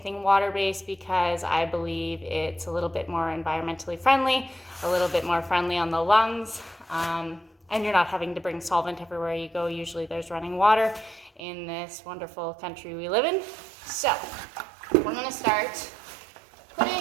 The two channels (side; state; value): left; drops out; at 11.4 s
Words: water-based, because I believe it's a little bit more environmentally friendly, a little bit more friendly on the lungs, and you're not having to bring solvent everywhere you go. Usually there's running water in this wonderful country we live in. So we're gonna start